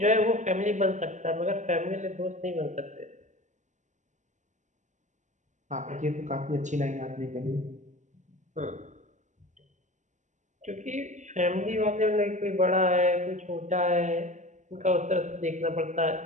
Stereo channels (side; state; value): left; late; 0.35 ms